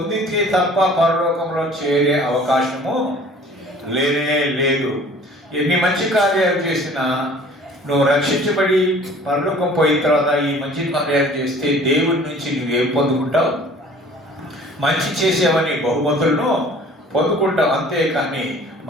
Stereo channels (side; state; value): both; normal; correlation 0.50